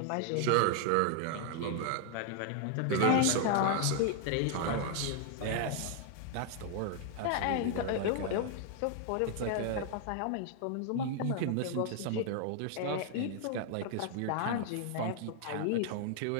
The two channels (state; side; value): different; both; correlation 0.00